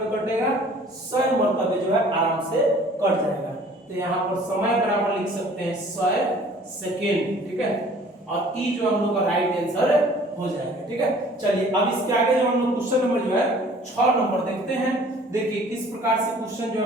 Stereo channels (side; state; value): both; normal; correlation 0.52